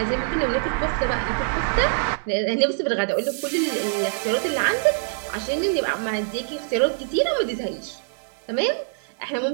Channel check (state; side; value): silent; left; digital silence